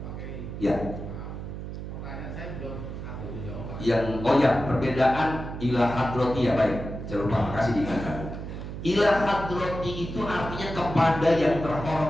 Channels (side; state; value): right; noise; hum, 8 dB below the sound